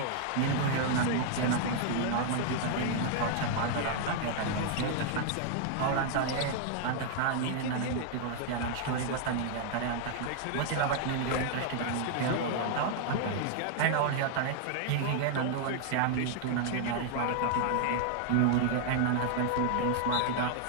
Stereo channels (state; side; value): different; both; correlation 0.00